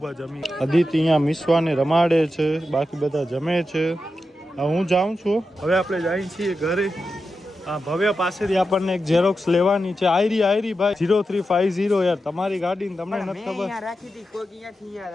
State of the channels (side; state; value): both; normal; correlation 0.89